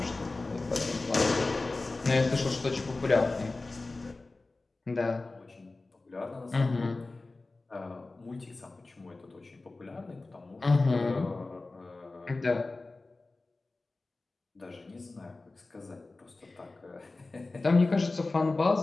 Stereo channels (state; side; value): quieter; right; 3.3 dB